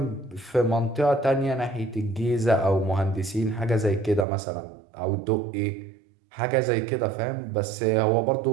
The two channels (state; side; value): drops out; left; at 4.2 s